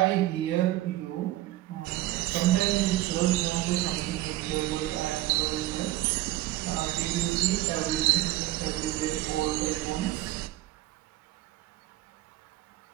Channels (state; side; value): quieter; left; 16.2 dB